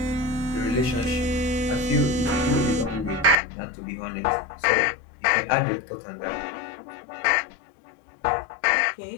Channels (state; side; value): drops out; right; at 3.4 s